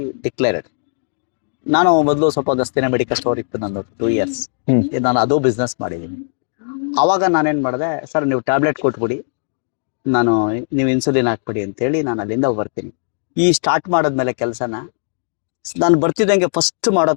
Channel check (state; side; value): silent; right; 67 dB below the other